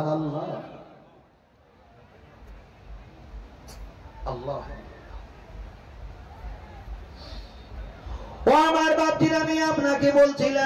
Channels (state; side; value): identical; both; correlation 1.00